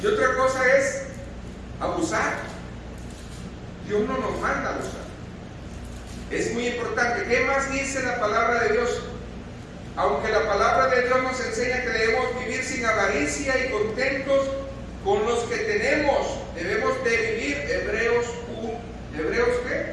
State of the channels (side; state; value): both; identical; correlation 1.00